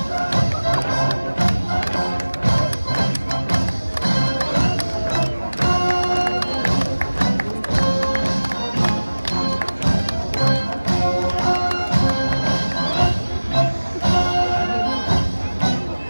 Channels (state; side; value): inverted; both; correlation -1.00